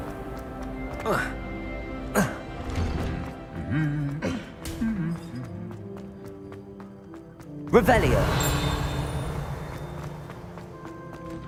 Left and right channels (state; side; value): identical; both; correlation 1.00